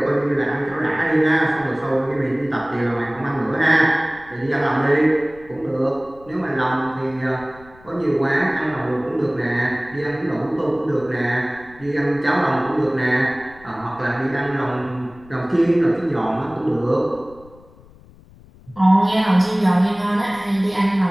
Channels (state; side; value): noise; left; rumble, 24 dB below the sound